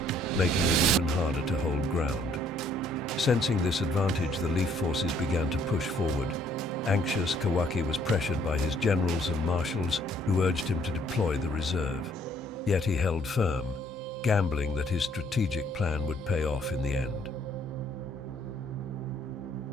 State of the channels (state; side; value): normal; both; correlation 0.64